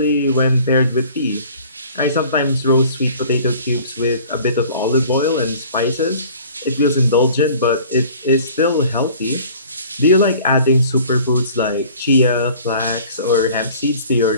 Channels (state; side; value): inverted; both; correlation -0.49